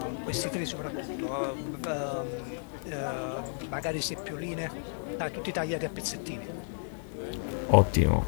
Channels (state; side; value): silent; right; digital silence